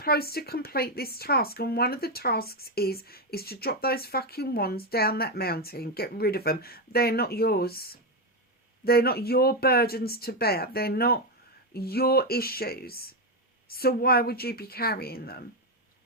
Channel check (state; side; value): normal; both; correlation 0.08